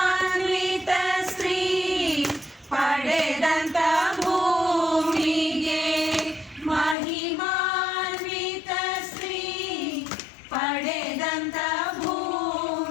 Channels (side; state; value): right; drops out; at 7.0 s